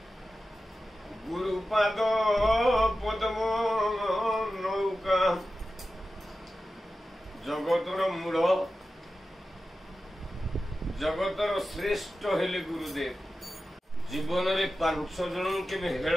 गुरुपाद पद्म नौका जगतर मूल जगतर श्रेष्ठ हेले गुरुदेव। जीवन रे 5 जन के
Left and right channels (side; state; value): both; normal; correlation 0.93